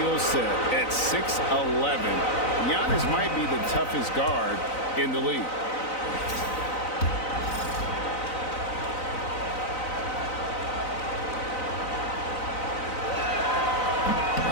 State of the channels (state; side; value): late; right; 4.0 ms